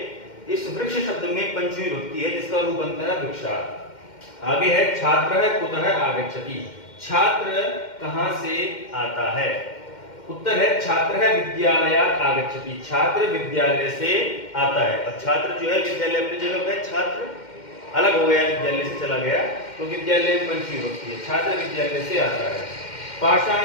इस वृक्ष शब्द में पंचमी विभक्ति है जिसका रूप बनता है वृक्षात्। आगे है छात्र कुतः आगच्छति। छात्र कहां से आता है। उत्तर है छात्र विद्यालयात् आगच्छति, छात्र विद्यालय से आता है। अब छात्र जो है विद्यालय अपनी जगह पे, छात्र अलग हो गया, विद्यालय से चला गया, तो विद्यालय में पंचमी विभक्ति है, छात्र विद्यालय से आता है।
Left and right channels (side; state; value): right; late; 2.1 ms